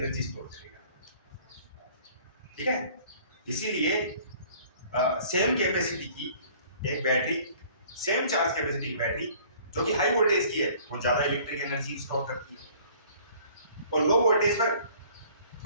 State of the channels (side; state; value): both; inverted; correlation -0.53